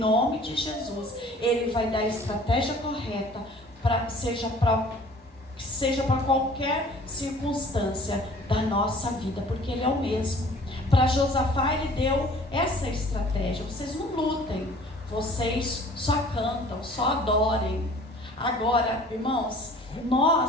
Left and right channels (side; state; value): both; normal; correlation 0.50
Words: de Jesus, Ele vai dar a estratégia correta, seja para qualquer circunstância da nossa vida, porque Ele é o mesmo. Para Josafá Ele deu essa estratégia: vocês não lutem, vocês só cantam, só adorem. Agora, irmãos,